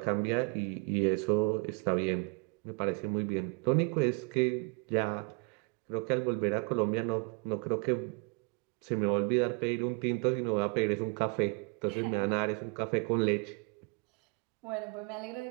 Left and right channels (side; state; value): left; quieter; 33.5 dB